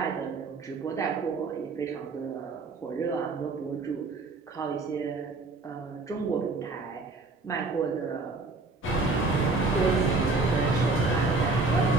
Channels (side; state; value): left; quieter; 3.6 dB